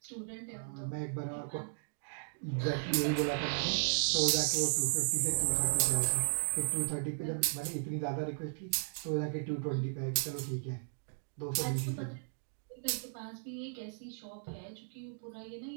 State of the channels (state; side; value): silent; left; digital silence